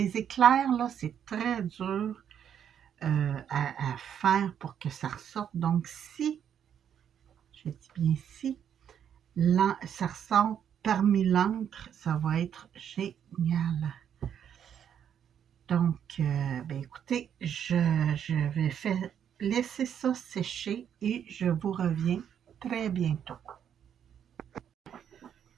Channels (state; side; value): quieter; left; 8.9 dB